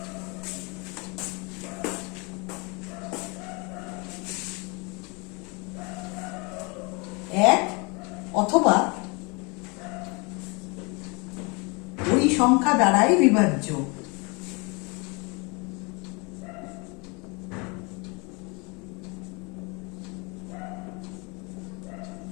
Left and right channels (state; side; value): quieter; right; 29.7 dB